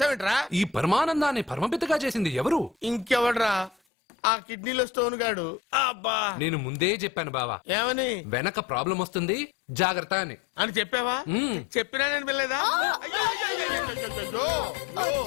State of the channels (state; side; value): drops out; right; at 3.8 s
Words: ఈ పరమానందాన్ని పరమపితగా చేసింది ఎవరు? ఇంకెవడ్రా? ఆ కిడ్నీలో స్టోన్ గాడు. అబ్బా నేను ముందే చెప్పాను బావా. ఏమని? వెనక ప్రాబ్లం వస్తుంది జాగ్రత్త అని. అని చెప్పావా? చెప్పినా నేను వెళ్ళలేదా?